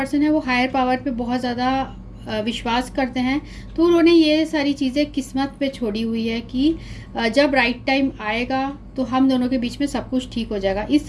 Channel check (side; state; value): both; identical; correlation 1.00